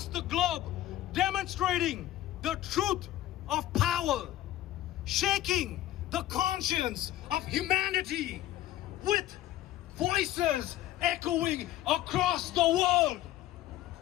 the globe, demonstrating the truth of power, shaking the conscience of humanity with voices echoing across the world.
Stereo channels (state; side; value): quieter; right; 14.3 dB